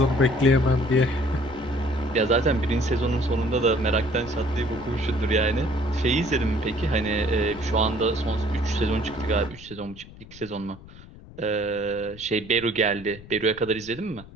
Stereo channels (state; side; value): noise; left; rumble, 19 dB below the sound